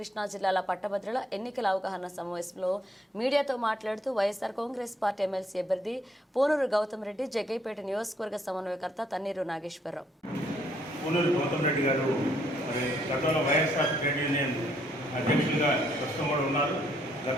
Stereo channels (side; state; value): both; normal; correlation 0.70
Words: జిల్లాల పట్టభద్రుల ఎన్నికల అవగాహన సమావేశంలో మీడియాతో మాట్లాడుతూ వైఎస్ఆర్ కాంగ్రెస్ పార్టీ ఎమ్మెల్సీ అభ్యర్థి పూనూరు గౌతమ్ రెడ్డి జగ్గైపేట నియోజకవర్గ సమన్వయకర్త తన్నీరు నాగేశ్వరరావు. పూనూరు గౌతమ్ రెడ్డి గారు గతంలో వైఎస్ఆర్ ట్రేడ్ యూనియన్ అధ్యక్షులుగా ప్రస్తుతం కూడా ఉన్నారు.